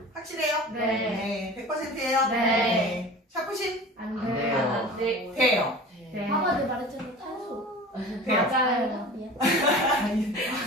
확실해요? 네. 100%예요? 네. 샤프심 안 안 돼요. 돼요. 안 돼. 돼요. 네. 봐봐 내 말했잖아 탄소. 돼요. 맞아요. 아니,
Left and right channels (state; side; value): normal; both; correlation 0.38